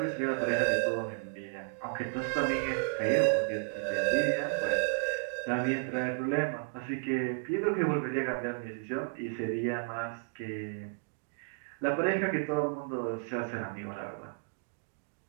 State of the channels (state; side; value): silent; left; digital silence